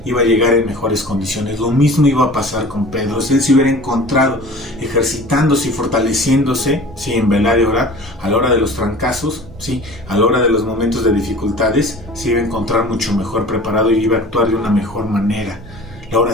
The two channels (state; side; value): normal; both; correlation 0.42